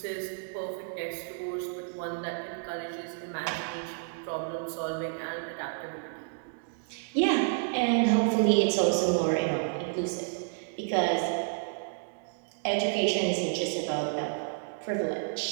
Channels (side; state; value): left; silent; digital silence